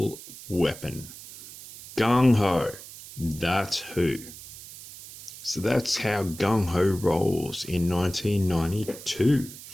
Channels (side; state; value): right; noise; hiss, 15 dB below the sound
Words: weapon? Gung Ho. That's who. So that's how Gung Ho rolls in 1992.